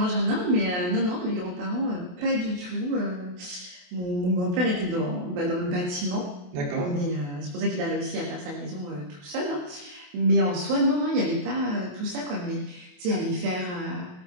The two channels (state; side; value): late; left; 28 ms